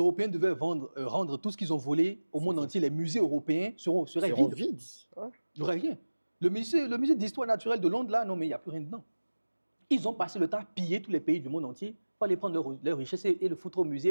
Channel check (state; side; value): inverted; both; correlation -1.00